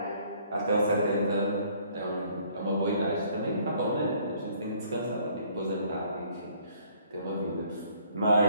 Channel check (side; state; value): both; inverted; correlation -0.61